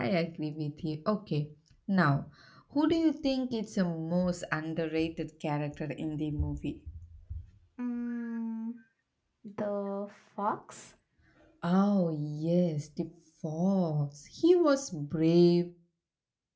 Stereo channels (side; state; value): both; identical; correlation 1.00